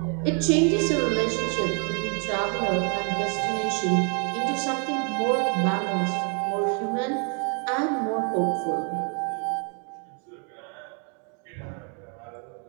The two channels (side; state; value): left; quieter; 38.8 dB